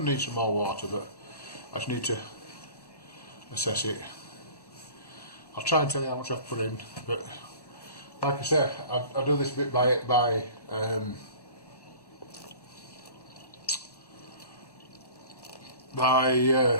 to need some more water, but I just need to assess it. I'll try and tell you how much I've put in, but like I said, I do this bit by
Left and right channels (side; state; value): right; late; 1.1 ms